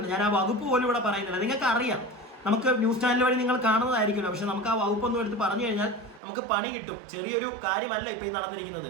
ഞാൻ ആ വകുപ്പ് പോലും ഇവിടെ പറയുന്നില്ല. നിങ്ങൾക്ക് അറിയാം, നമുക്ക് ന്യൂസ് ചാനൽ വഴി നിങ്ങൾ കാണുന്നതായിരിക്കുമല്ലോ. പക്ഷെ നമുക്ക് ആ വകുപ്പൊന്നും എടുത്ത് പറഞ്ഞു കഴിഞ്ഞാൽ നമുക്ക് പണി കിട്ടും. ചെറിയൊരു കാര്യമല്ല ഇപ്പൊ ഈ നടന്നിരിക്കുന്നത്.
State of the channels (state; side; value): drops out; left; at 6.2 s